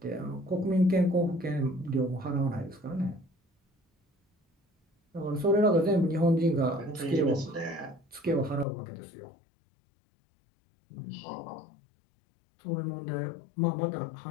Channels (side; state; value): right; drops out; at 8.7 s